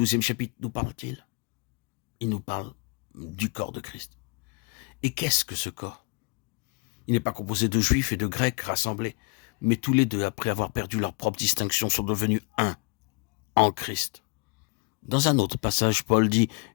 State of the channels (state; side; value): quieter; right; 32.6 dB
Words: chapitre nous parle-t-il? Il nous parle du corps de Christ. Et qu'est-ce que ce corps? Il n'est pas composé de juifs et de grecs rassemblés, mais tous les deux, après avoir perdu leur propre distinction, sont devenus un en Christ. Dans un autre passage, Paul dit